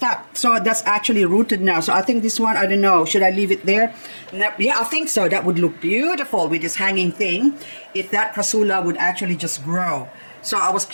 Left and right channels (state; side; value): inverted; both; correlation -1.00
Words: So that's actually rooted now. So I think this one, I don't know, should I leave it there? No, yeah, I think so. That would look beautiful with this hanging thing if that Crassula would actually just grow. So I was